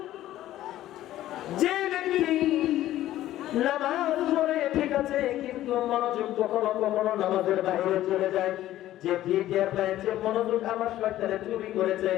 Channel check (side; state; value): right; quieter; 13.9 dB